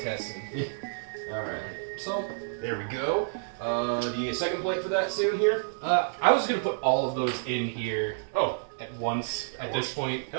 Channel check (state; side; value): silent; left; digital silence